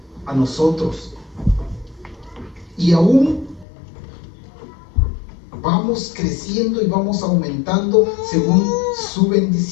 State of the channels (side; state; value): right; drops out; at 3.7 s